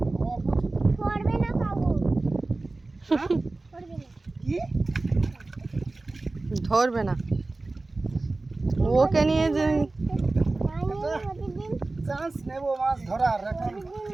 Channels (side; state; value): left; quieter; 3.2 dB